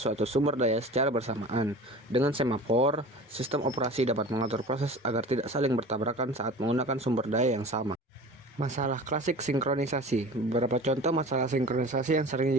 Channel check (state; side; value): normal; both; correlation 0.38